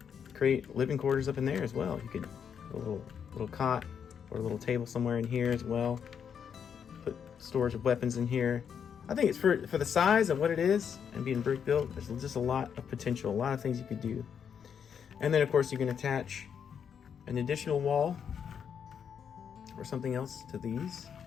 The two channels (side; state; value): right; quieter; 7.5 dB